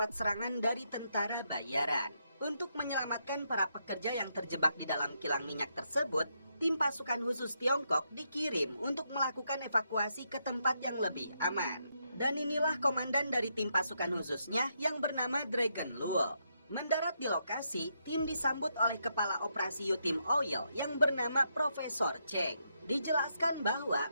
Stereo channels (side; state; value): both; inverted; correlation -0.80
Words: serangan dari tentara bayaran. Untuk menyelamatkan para pekerja yang terjebak di dalam kilang minyak tersebut, tim pasukan khusus Tiongkok dikirim untuk melakukan evakuasi ke tempat yang lebih aman. Dan inilah komandan dari tim pasukan khususnya yang bernama Dragon Luo. Mendarat di lokasi, tim disambut oleh kepala operasi Yutim Oil yang bernama Profesor Cheng. Dijelaskan bahwa